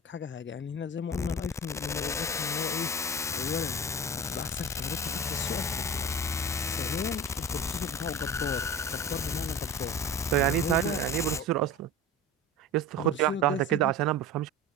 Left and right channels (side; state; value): both; normal; correlation 0.33